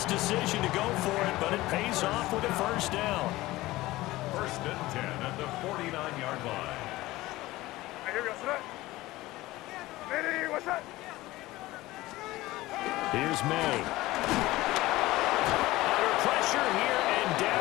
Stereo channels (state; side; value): quieter; right; 18.2 dB